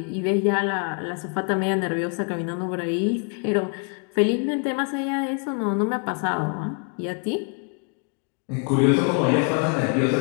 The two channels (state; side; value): quieter; right; 37.9 dB